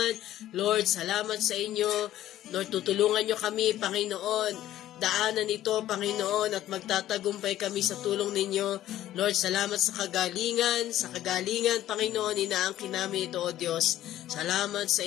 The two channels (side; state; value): right; quieter; 13.2 dB